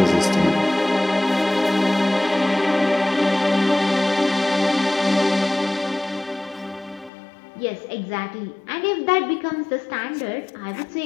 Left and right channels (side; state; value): right; drops out; at 7.1 s